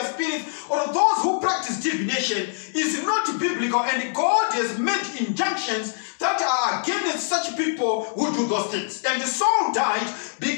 spirits, or those who practice divination is not biblical, and God has made injunctions that are against such people who do those things. And Saul died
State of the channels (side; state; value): right; silent; digital silence